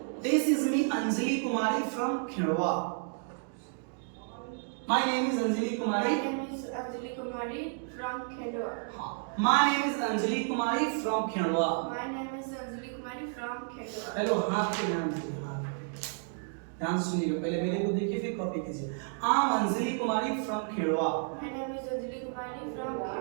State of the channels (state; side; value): silent; left; 57 dB below the other